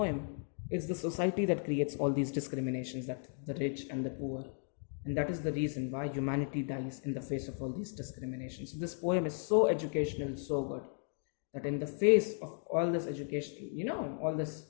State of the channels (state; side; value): silent; right; 54 dB below the other